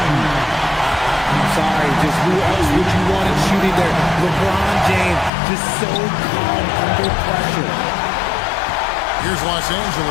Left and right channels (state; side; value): drops out; right; at 5.3 s